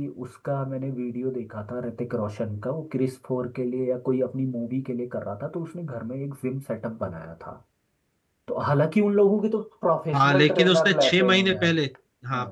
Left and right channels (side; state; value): both; identical; correlation 1.00